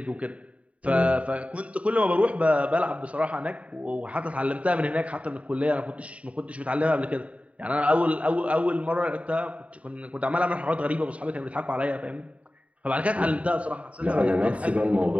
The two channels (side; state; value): left; late; 0.066 ms